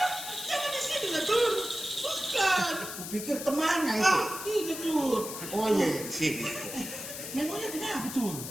Jangan di sini lah, Tur. Bukan. Kupikir temannya itu. Ini, Tur. Oh iya, di sini. Memangnya kenapa, Tur?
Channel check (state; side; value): noise; left; hiss, 8 dB below the sound